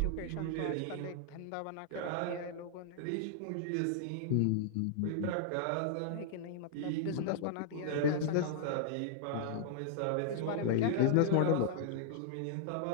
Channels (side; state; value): both; different; correlation -0.01